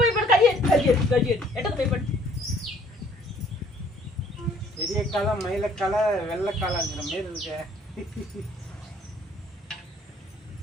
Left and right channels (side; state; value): both; normal; correlation 0.59